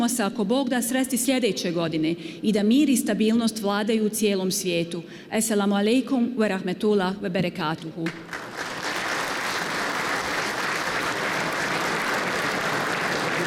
se, ako Bog da, sresti sljedeće godine i da mir i stabilnost vladaju u cijelom svijetu. Assalamu alaikum wa rahmetullah wa barakatuhu.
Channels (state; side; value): identical; both; correlation 1.00